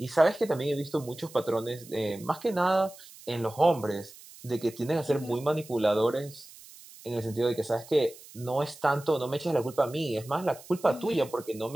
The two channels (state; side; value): noise; right; hiss, 20 dB below the sound